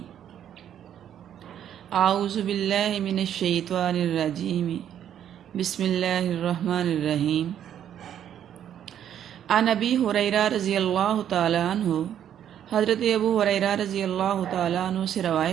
اعوذ باللہ من الشیطان الرجیم، بسم اللہ الرحمن الرحیم۔ عن ابی ہریرہ رضی اللہ تعالیٰ عنہ، حضرت ابو ہریرہ رضی اللہ تعالیٰ عنہ سے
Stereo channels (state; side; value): quieter; left; 9.9 dB